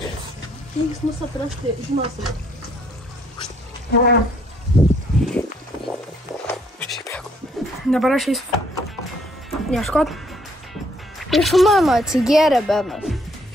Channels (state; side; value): normal; both; correlation 0.67